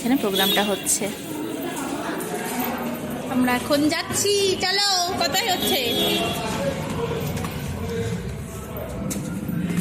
প্রোগ্রামটা হচ্ছে। আমরা এখন যাচ্ছি, চলো। কোথায় হচ্ছে?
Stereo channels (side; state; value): both; identical; correlation 1.00